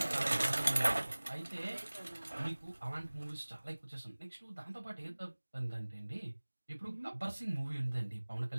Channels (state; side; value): inverted; both; correlation -1.00